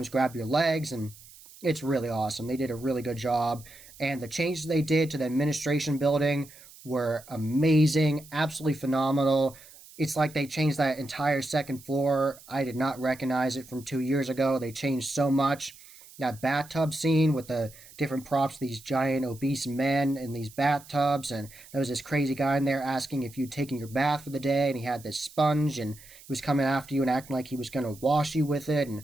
grab your legs, and it's really awesome. They did a really good job, and the changes they did to the administration building were amazing, absolutely phenomenal. It's like they changed that entire second floor. I did not recognize it from 2 years ago. They changed so much. That bathtub scene with the different props, these giant obese men in these bathtubs, and there was this crazy guy in there asking if you'd taken your bath for the day, and he had this sponge, and he was coming after you and acting like he was going to wash you with it, and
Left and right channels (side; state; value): right; noise; hiss, 21 dB below the sound